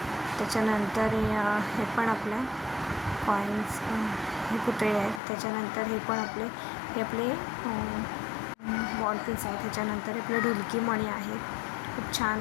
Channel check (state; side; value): drops out; right; at 5.2 s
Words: त्याच्यानंतर हे पण आपल्या कॉईन्स, हे पुतळे आहेत. त्याच्यानंतर हे आपले बॉल पिन्स आहेत. त्याच्यानंतर आपले ढुलकी मणी आहेत. खूप छान